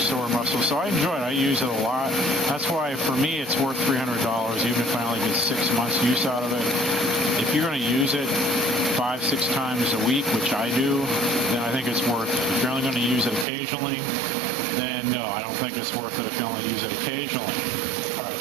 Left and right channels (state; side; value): drops out; left; at 13.5 s